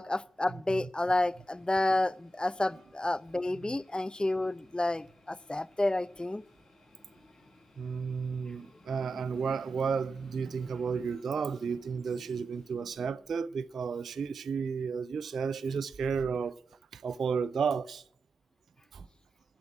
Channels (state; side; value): normal; both; correlation 0.90